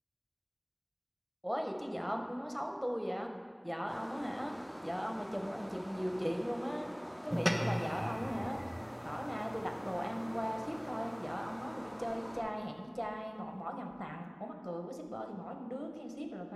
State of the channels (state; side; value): identical; both; correlation 1.00